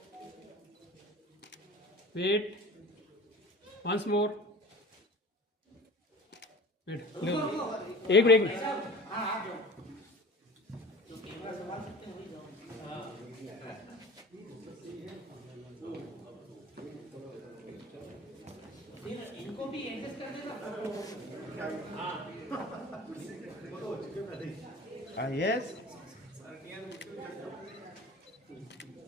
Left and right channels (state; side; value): normal; both; correlation 0.41